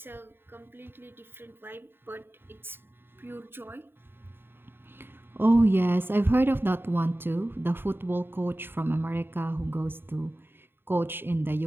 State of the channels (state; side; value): late; left; 0.10 ms